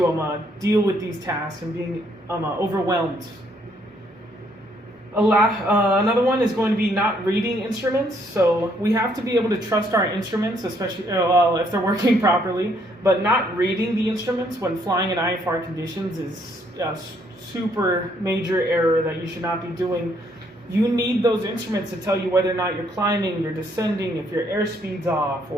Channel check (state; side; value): normal; both; correlation 0.69